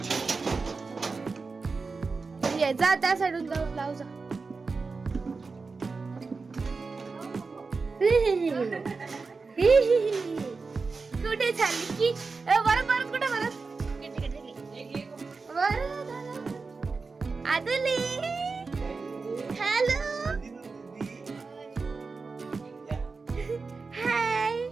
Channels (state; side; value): quieter; left; 4.3 dB